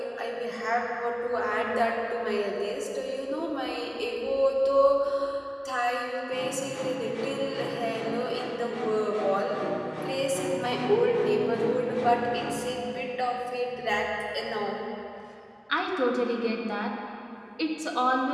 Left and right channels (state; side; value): identical; both; correlation 1.00